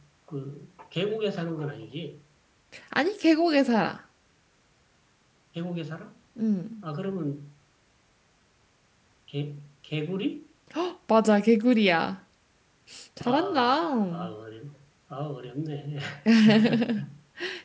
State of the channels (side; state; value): both; identical; correlation 1.00